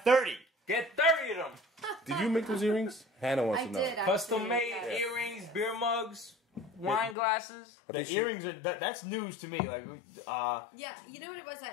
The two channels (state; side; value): drops out; right; at 7.2 s